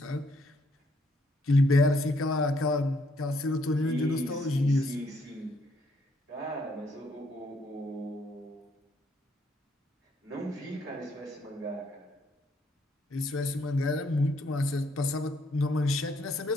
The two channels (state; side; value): normal; both; correlation 0.70